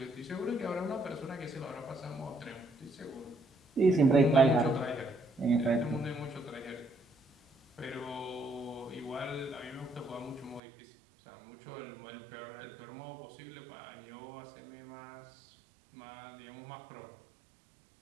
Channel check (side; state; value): left; drops out; at 10.6 s